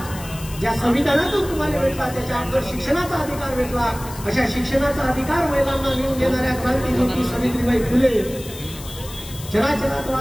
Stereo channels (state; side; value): noise; left; hiss, 15 dB below the sound